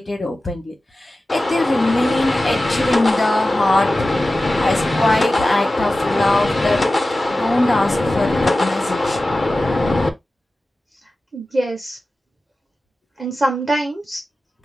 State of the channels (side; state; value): both; normal; correlation 0.95